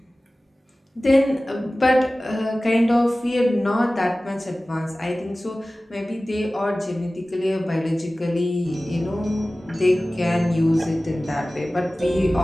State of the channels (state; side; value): normal; both; correlation 0.97